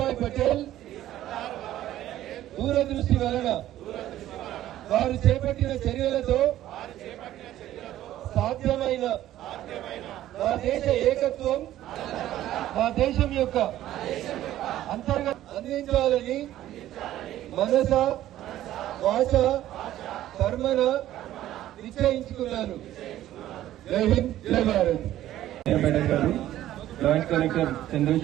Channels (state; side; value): quieter; left; 13.4 dB